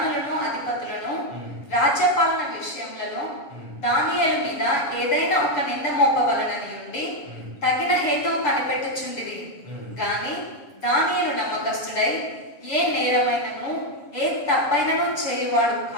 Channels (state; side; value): late; right; 6.9 ms